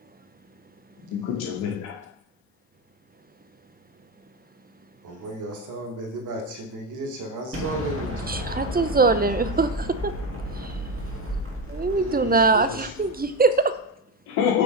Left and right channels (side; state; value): both; normal; correlation 0.15